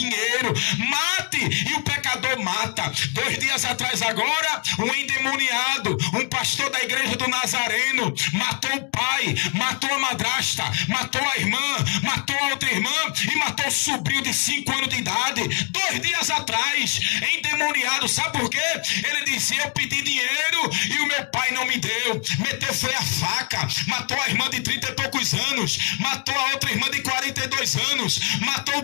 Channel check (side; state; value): right; quieter; 34.1 dB